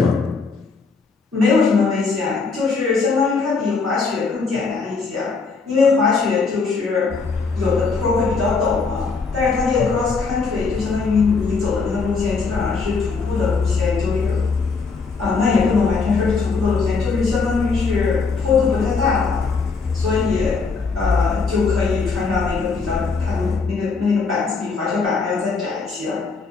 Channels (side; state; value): right; quieter; 4.6 dB